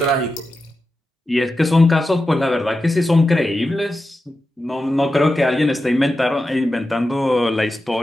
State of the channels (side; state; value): both; normal; correlation 0.91